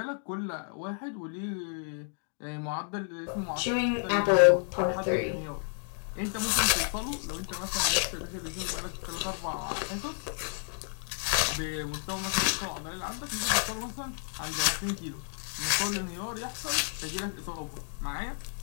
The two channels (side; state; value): right; silent; 57 dB below the other